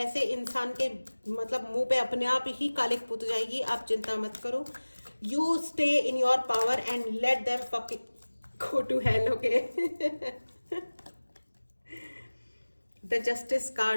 इंसान के मतलब मुंह पे अपने आप ही कालिक पुत जाएगी, आप चिंता मत करो। You stay in your power and let them fucking go to hell, okay. The justice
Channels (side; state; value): both; inverted; correlation -1.00